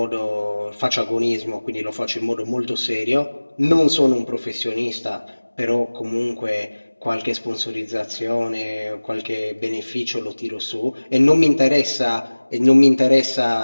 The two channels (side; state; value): both; inverted; correlation -1.00